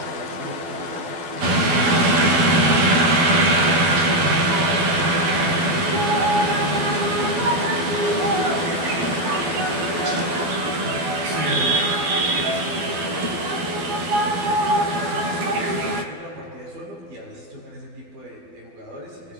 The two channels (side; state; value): left; late; 12 ms